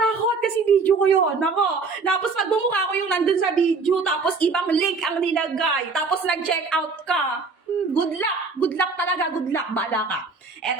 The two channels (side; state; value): left; quieter; 4.3 dB